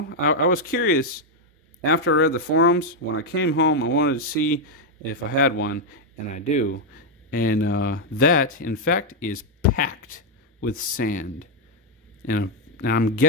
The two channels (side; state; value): both; normal; correlation 0.01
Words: I was curious after I read the forums. When I came home, I wanted to see if I had one, and I do. And that, in fact, is packed with sand. And I'm